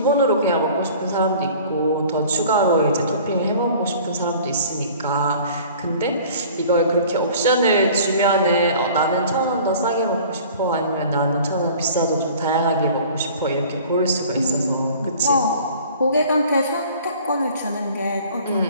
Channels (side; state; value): both; inverted; correlation -0.47